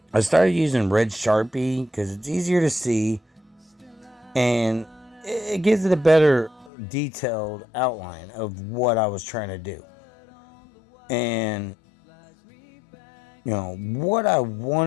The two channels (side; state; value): right; drops out; at 6.7 s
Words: I started using red Sharpie because it's easier to see. And it gives it a better detailed outline of what I was trying to do. And, what I